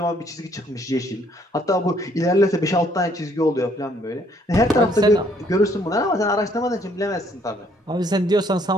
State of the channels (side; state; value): both; normal; correlation 0.65